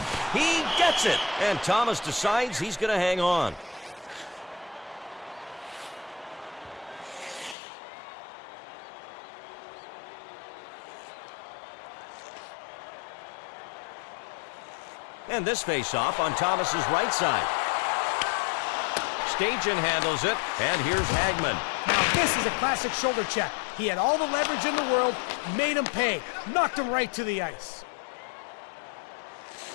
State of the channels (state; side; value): drops out; right; at 7.6 s